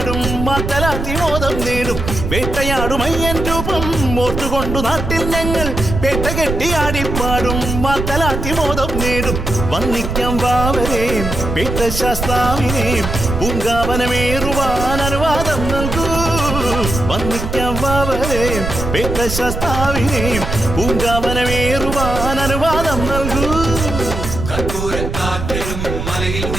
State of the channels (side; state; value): right; noise; rumble, 4 dB below the sound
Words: മാത്തലാത്തി മോദം നേടും വേട്ടയാടും അയ്യൻ രൂപം ഓർത്തുകൊണ്ടു നാട്ടിൽ ഞങ്ങൾ പേട്ട കെട്ടിയാടിപ്പാടും മാത്തലാത്തി മോദം നേടും വന്നിക്കാം വാവരേം പേട്ട ശാസ്താവിനേം പൂങ്കാവനമേറുവാൻ അനുവാദം നൽകൂ വന്നിക്കാം വാവരേം പേട്ട ശാസ്താവിനേം പൂങ്കാവനമേറുവാൻ അനുവാദം നൽകൂ കർപ്പൂരക്കാറ്റിടും മലയിൽ